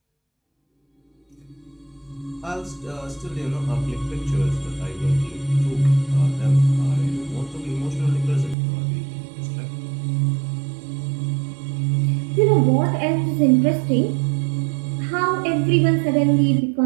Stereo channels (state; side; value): drops out; left; at 8.6 s